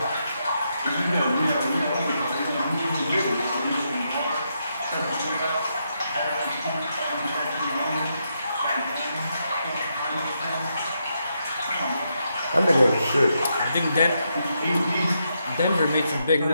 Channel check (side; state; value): both; inverted; correlation -0.81